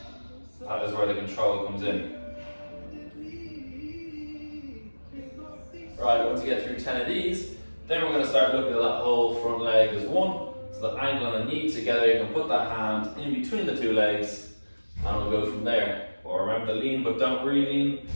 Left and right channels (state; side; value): inverted; both; correlation -1.00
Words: That is where the control comes in. Right, once you get through 10 of these, then we're going to start looking at that whole front leg as one. So the ankle and the knee together, you can put that hand in between the two legs, and we'll go from there. But remember to lean, but don't re-lean.